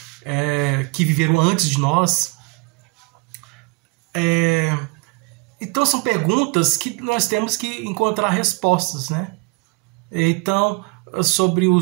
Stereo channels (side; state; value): left; quieter; 29.8 dB